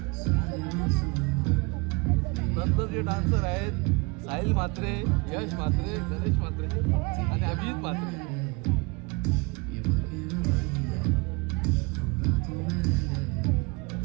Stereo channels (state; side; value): quieter; left; 28.4 dB